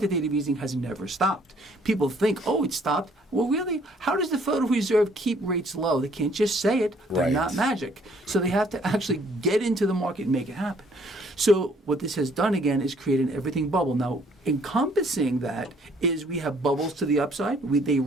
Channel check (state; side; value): normal; both; correlation 0.62